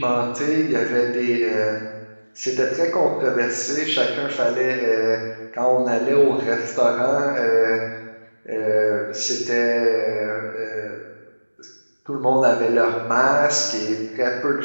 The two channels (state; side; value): inverted; both; correlation -1.00